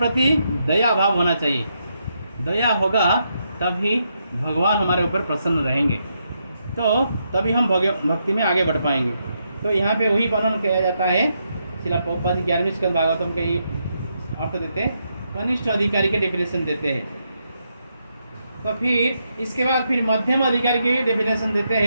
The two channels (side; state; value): both; inverted; correlation -0.80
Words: दया भाव होना चाहिए, दया होगा तभी भगवान हमारे ऊपर प्रसन्न रहेंगे, तो तभी हम भक्ति में आगे बढ़ पाएंगे। तो यहाँ पे वही वर्णन किया जाता है, श्रील प्रभुपाद जी 11वें स्कंद भागवतम के ये अर्थ देते हैं, कनिष्ठ अधिकारी के डेफिनेशन देते हैं। तो फिर इसके बाद फिर मध्यम अधिकारी की डेफिनेशन देते